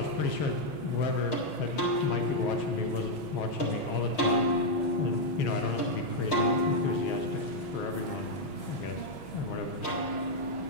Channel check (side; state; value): right; late; 6.2 ms